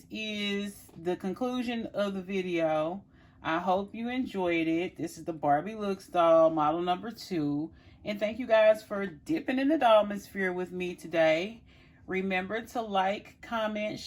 is the conclusion of the video. I hope you enjoyed it. This is the Barbie Looks doll, model number 2. And thank you guys for dipping in the dollmosphere with me today. Remember to like, comment,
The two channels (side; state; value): both; identical; correlation 1.00